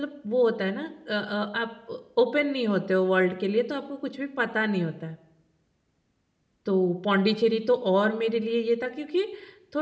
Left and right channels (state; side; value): identical; both; correlation 1.00